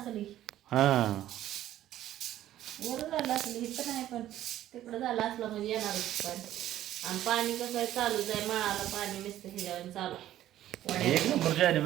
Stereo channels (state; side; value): quieter; left; 13.0 dB